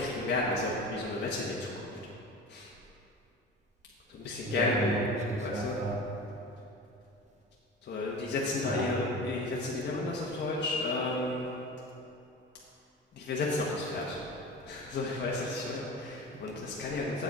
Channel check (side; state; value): both; normal; correlation 0.34